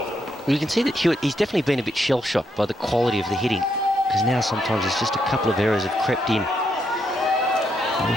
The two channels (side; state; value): both; normal; correlation 0.78